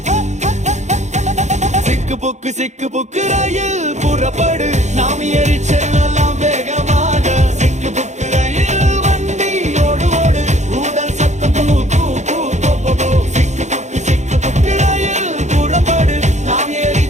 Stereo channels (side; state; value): left; late; 0.34 ms